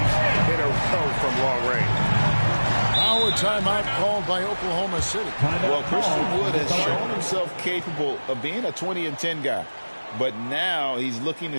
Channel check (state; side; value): inverted; both; correlation -1.00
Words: in a row from long range. Now a timeout called by Oklahoma City. Well, Christian Wood has shown himself capable of being a 20-10 guy. But now he's looking